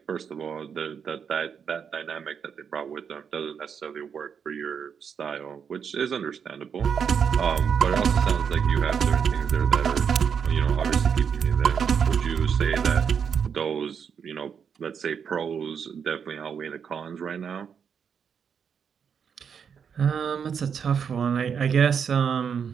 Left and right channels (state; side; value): quieter; left; 7.1 dB